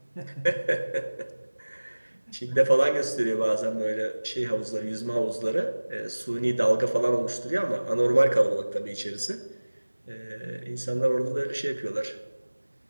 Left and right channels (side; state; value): both; inverted; correlation -1.00